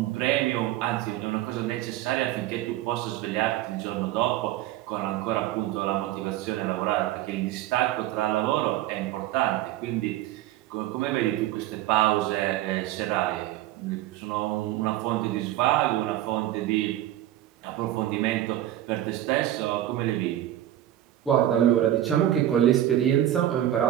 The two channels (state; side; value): quieter; left; 13.2 dB